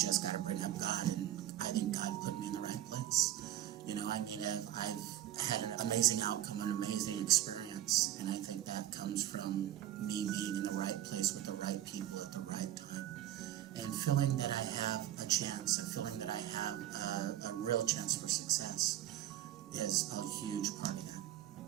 got to bring up God, and I think God put me in the right place. I've had an amazing outcome, an amazing experience, and I think that comes from me being in the right place with the right people at the right time. And feeling that I have a chance, feeling that I have a real chance for success is a huge part of that,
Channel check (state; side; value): quieter; left; 12.7 dB